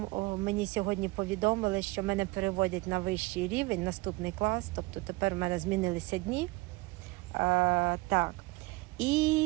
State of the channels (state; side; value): quieter; left; 22.8 dB